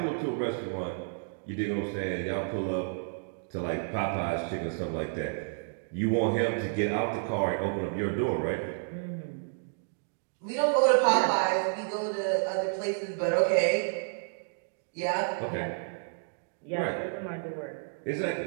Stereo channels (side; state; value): left; silent; digital silence